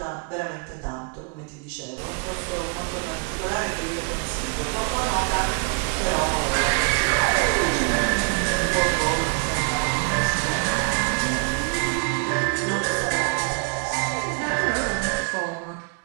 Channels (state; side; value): quieter; left; 35.2 dB